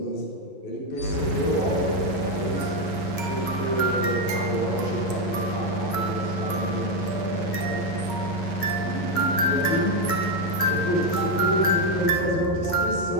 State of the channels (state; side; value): late; right; 11 ms